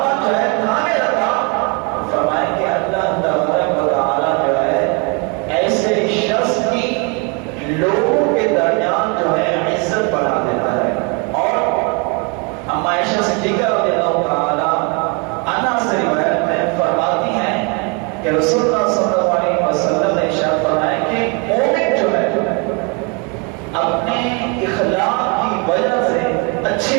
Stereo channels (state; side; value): quieter; left; 32.9 dB